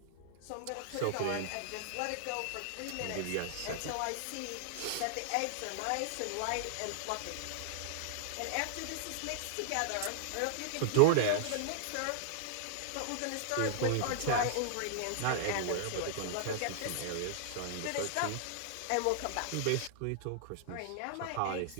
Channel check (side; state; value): both; different; correlation -0.01